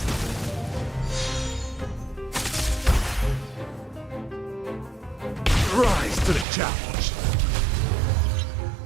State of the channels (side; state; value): left; drops out; at 6.5 s